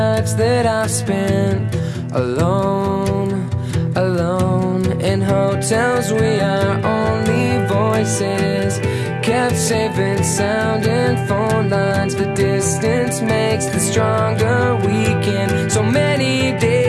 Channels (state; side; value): noise; left; rumble, 30 dB below the sound